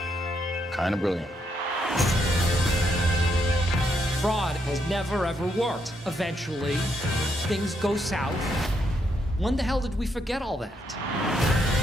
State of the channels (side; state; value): both; normal; correlation 0.77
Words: Kind of brilliant. Fraud has never, ever worked. Eventually, things go south. When the hell did we forget all that?